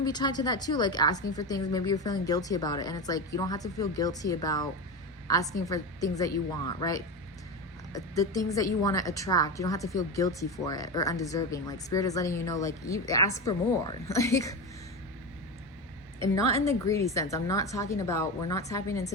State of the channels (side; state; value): both; normal; correlation 0.20